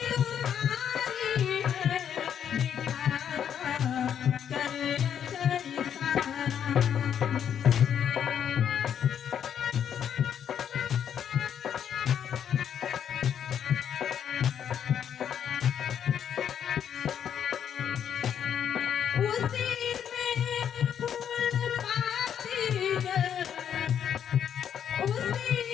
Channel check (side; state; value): right; quieter; 8.8 dB